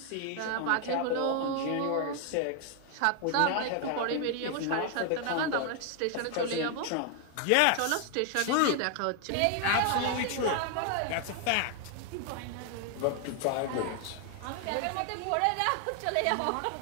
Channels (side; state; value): both; different; correlation 0.00